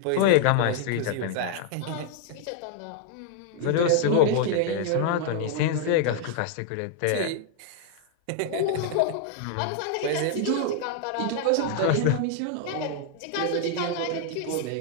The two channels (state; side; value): different; both; correlation 0.00